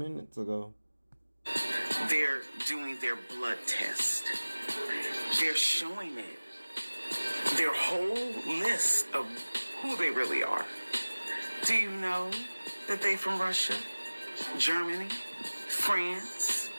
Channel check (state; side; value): inverted; both; correlation -1.00